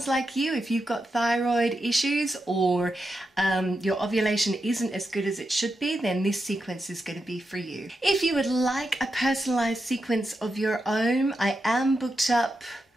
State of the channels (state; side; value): normal; both; correlation 0.87